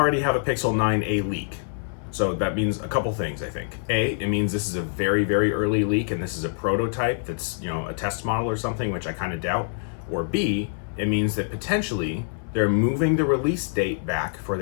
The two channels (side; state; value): right; silent; 56 dB below the other